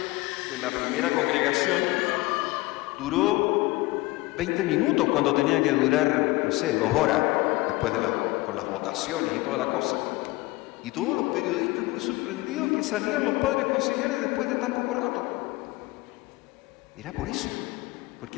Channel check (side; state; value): right; quieter; 21.2 dB